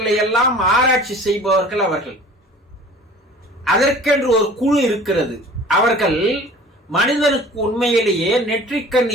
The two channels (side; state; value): both; normal; correlation 0.45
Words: எல்லாம் ஆராய்ச்சி செய்பவர்கள் அவர்கள். அதற்கென்று ஒரு குழு இருக்கிறது. அவர்கள் மனிதனுக்கு உண்மையிலேயே நெற்றிக்கண்